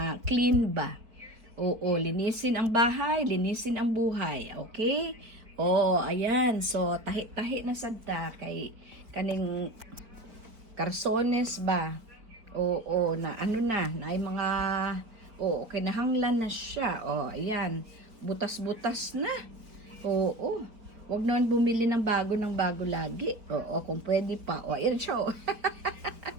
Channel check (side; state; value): left; late; 4.6 ms